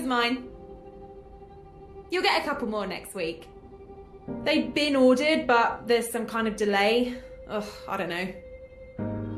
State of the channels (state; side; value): identical; both; correlation 1.00